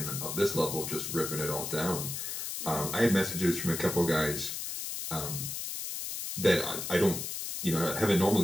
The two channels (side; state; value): left; noise; hiss, 5 dB below the sound